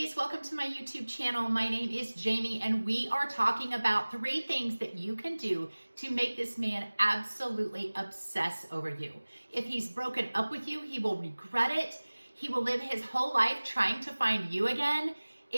welcome to my YouTube channel. My name is Jamie and we are talking about 3 things that you can do to make this man absolutely obsess over you. If he's broken up with you, he will regret it. He will live his whole life trying to find you again.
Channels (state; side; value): inverted; both; correlation -1.00